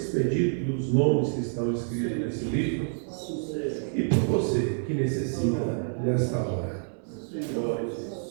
pedidos, dos nomes que estão escritos nesse livro, e por você que necessita desta hora. Glória a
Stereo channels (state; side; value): silent; left; digital silence